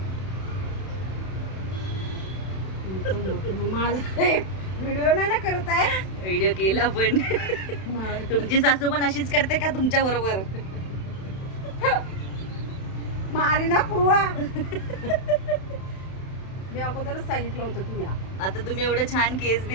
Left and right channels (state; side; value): late; right; 32 ms